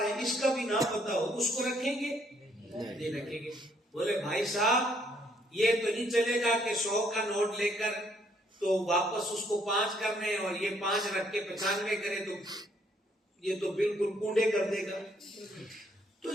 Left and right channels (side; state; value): both; normal; correlation 0.68